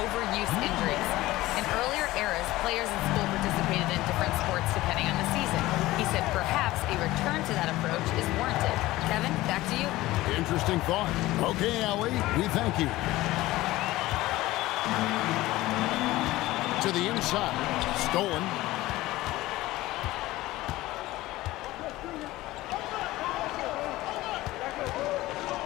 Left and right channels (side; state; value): right; quieter; 17.7 dB